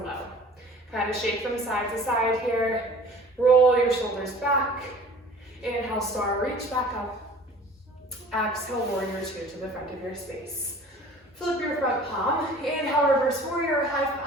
low. Kind of shake from side to side here. Roll your shoulders back. Inhale, star. Reach back up. Exhale, warrior two to the front of your space. Flip your front palm. Inhale, reverse warrior. High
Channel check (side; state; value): both; normal; correlation 0.47